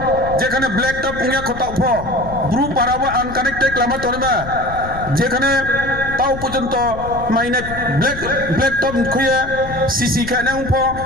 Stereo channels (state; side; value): noise; left; rumble, 11 dB below the sound